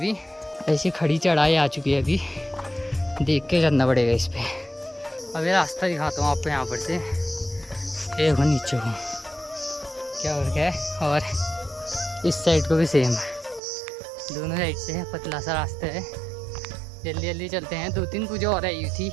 ऐसी खड़ी चढ़ाई आ चुकी है अभी, देख के चलना पड़ेगा इस पे। अभी रास्ता दिखाता हूँ आपको यहाँ पर से, देखो नीचे को क्या हो रहा है, और इस साइड को भी सेम, दोनों साइड से पतला सा रास्ता है। जल्दी जल्दी चलते हैं। 2-3 पूजा और आई हुई थी,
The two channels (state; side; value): drops out; left; at 13.6 s